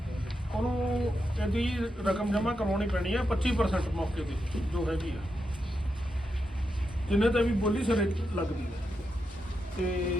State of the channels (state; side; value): normal; both; correlation 0.86